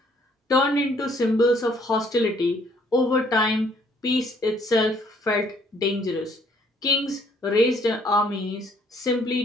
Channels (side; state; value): both; normal; correlation 0.63